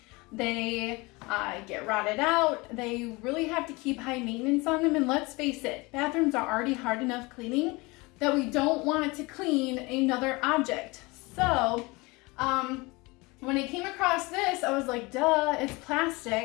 They get rotted out. They really have to keep high maintenance on them, and let's face it, bathrooms are already hard enough cleaning that we don't want to clean another object. So when I came across this, I was like, duh, it's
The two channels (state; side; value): quieter; right; 24.6 dB